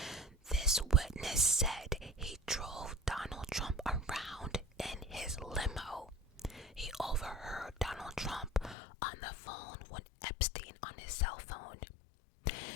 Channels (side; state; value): right; drops out; at 8.8 s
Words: This witness said he drove Donald Trump around in his limo. He overheard Donald Trump on the phone with Epstein on his cell phone.